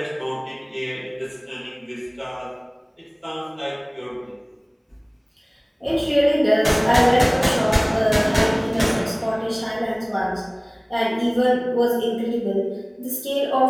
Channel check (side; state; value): both; identical; correlation 1.00